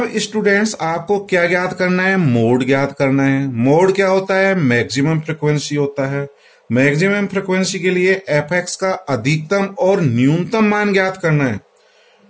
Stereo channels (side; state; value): both; identical; correlation 1.00